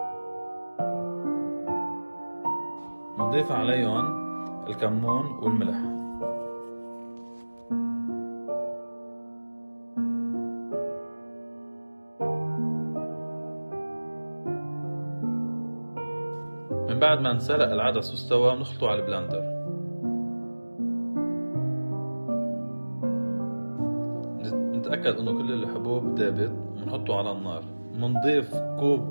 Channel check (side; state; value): both; inverted; correlation -1.00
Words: بنضيف عليهم الكمون والملح. من بعد ما انسلق العدس واستوى بنخلطه على البلندر. نتأكد انه كل الحبوب دابت ونحطه على النار. بنضيف